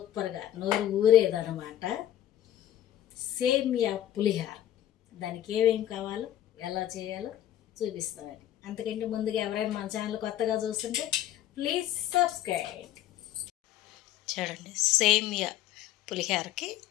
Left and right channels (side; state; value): right; quieter; 12.2 dB